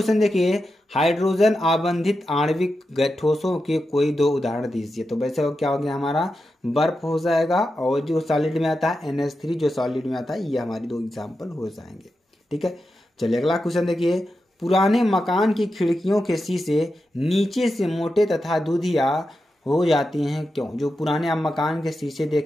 देखिए, हाइड्रोजन आबंधित आणविक ठोसों के कोई दो उदाहरण दीजिए। तो वैसे क्या हो गया हमारा, बर्फ हो जाएगा और जो सॉलिड में आता है NH3 जो सॉलिड में आता है, ये हमारी दो एग्जाम्पल हो जाएंगे। ठीक है, चलिए अगला क्वेश्चन देखिए। पुराने मकान की खिड़कियों के शीशे नीचे से मोटे तथा दूधिया हो जाती हैं, क्यों? जो पुराने आप मकान के शीशे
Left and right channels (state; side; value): normal; both; correlation 0.89